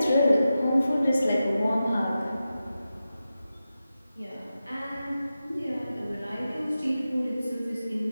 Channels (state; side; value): inverted; both; correlation -0.92